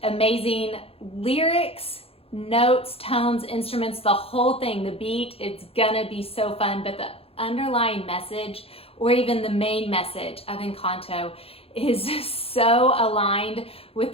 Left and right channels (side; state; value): right; late; 0.28 ms